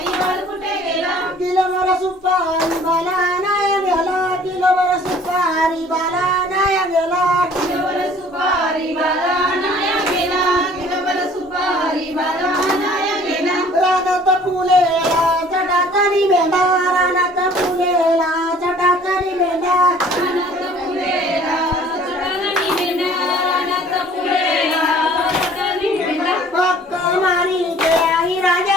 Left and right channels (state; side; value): normal; both; correlation 0.53